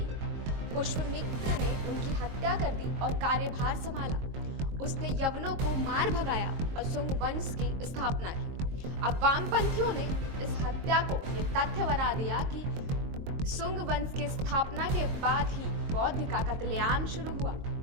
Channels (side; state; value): left; late; 22 ms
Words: पुष्यमित्र ने उनकी हत्या कर दी और कार्यभार संभाला। उसने यवनों को मार भगाया और शुंग वंश की स्थापना की। अब वामपंथियों ने इस हत्या को ये तथ्य बना दिया कि शुंग वंश की स्थापना के बाद ही बौद्ध का कत्लेआम शुरू हुआ।